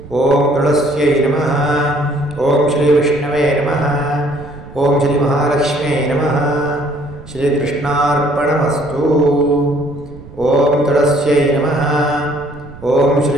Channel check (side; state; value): right; noise; rumble, 18 dB below the sound